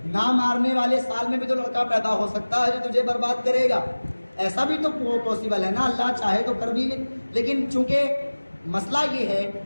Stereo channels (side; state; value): both; inverted; correlation -1.00